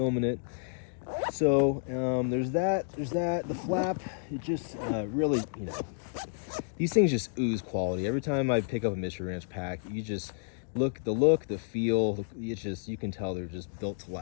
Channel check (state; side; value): silent; right; digital silence